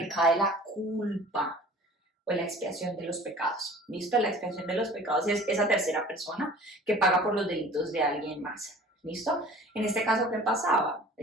la culpa o la expiación de los pecados. ¿Listo? La expiación de los pecados es esa tercera persona que paga por los delitos de alguien más. ¿Listo? En este caso, ¿qué pasaba?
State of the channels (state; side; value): normal; both; correlation 0.45